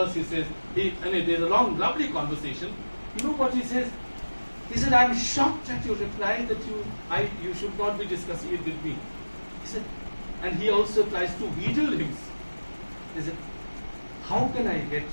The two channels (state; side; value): inverted; both; correlation -1.00